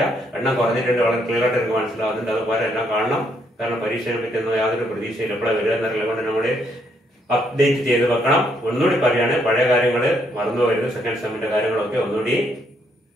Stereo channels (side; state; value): both; normal; correlation 0.73